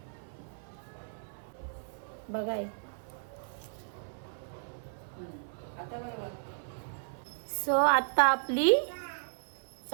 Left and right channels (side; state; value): left; silent; 55 dB below the other